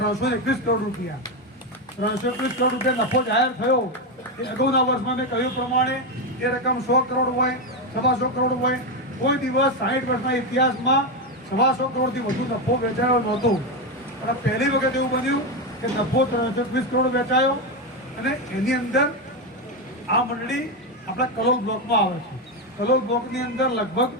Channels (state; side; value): normal; both; correlation 0.10